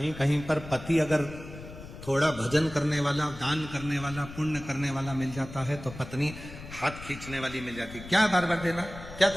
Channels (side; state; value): left; noise; rumble, 14 dB below the sound